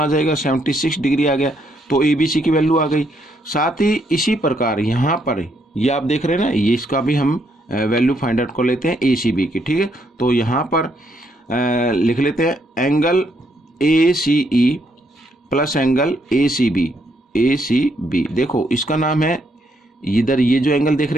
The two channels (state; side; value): normal; both; correlation 0.74